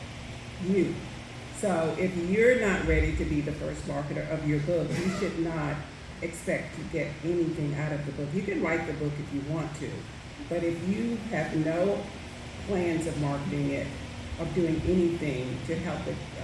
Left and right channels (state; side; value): identical; both; correlation 1.00